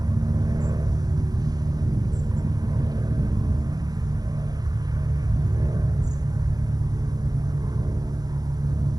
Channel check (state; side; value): late; left; 0.19 ms